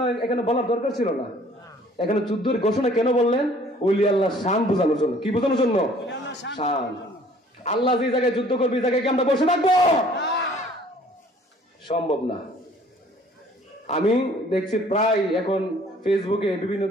এখানে বলার দরকার ছিল না। এখানে যুদ্ধের ঘোষণা কেন বললেন? ওলি আল্লাহর শান বোঝানোর জন্য। কি বোঝানোর জন্য? শান। আল্লাহ যে জায়গায় যুদ্ধ করবে, এই জায়গায় কি আমরা বসে থাকবো? সম্ভব না। আমি দেখছি প্রায় এখন ফেসবুকে বিভিন্ন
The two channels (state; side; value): normal; both; correlation 0.55